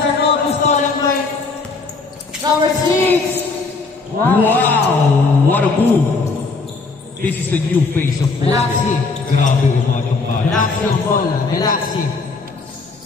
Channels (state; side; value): quieter; right; 4.0 dB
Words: Nobu stolen by number 6. Wow! What a move! This is the new face of football. Relaxing. Grabe umatong bala. Relaxing ang bola. Relaxing.